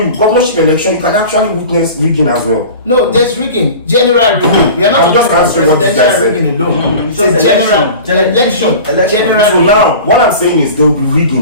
governorship election, you can actually witness rigging as well. No, there's rigging. General rigging. We are not I'm just talking about answering what this guy presidential said. rigging alone. It's just a general election. General So rigging. now, what I'm saying is there will be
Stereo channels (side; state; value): both; inverted; correlation -0.38